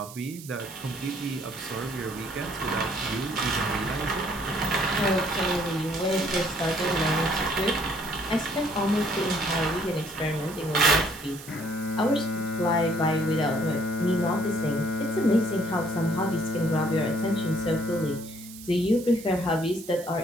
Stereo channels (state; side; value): noise; right; hiss, 16 dB below the sound